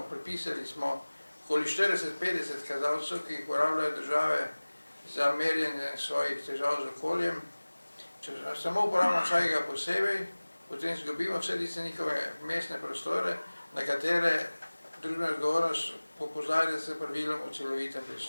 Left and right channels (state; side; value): inverted; both; correlation -1.00